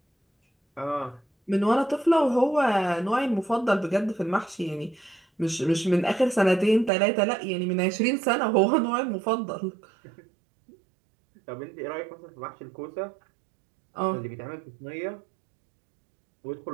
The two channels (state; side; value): drops out; left; at 6.9 s